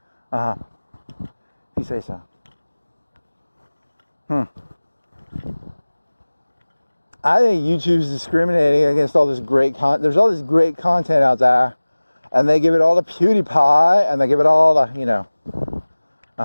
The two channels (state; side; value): inverted; both; correlation -1.00